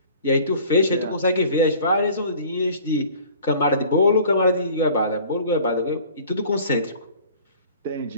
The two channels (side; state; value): both; inverted; correlation -0.48